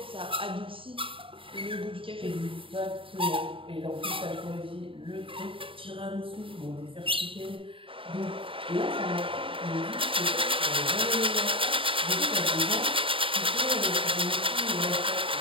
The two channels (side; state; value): left; late; 0.25 ms